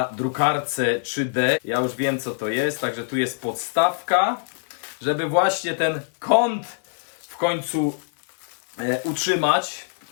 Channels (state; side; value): silent; right; 63 dB below the other